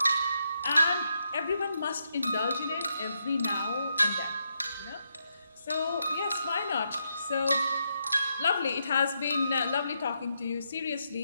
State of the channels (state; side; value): inverted; both; correlation -0.81